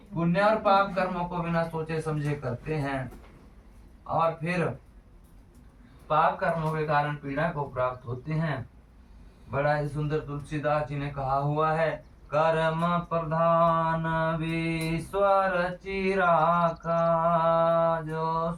पुण्य और पाप कर्मों को बिना सोचे समझे करते हैं और फिर पाप कर्मों के कारण पीड़ा को प्राप्त होते हैं। बड़ा ही सुंदर तुलसीदास जी ने कहा हुआ है, कर्म प्रधान विश्वर चिराका, जो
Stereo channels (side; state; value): both; identical; correlation 1.00